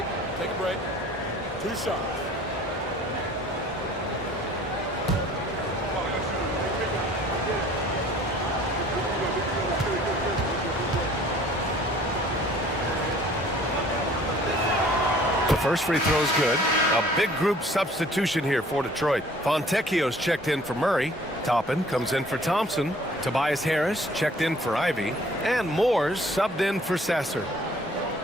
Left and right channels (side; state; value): both; normal; correlation 0.53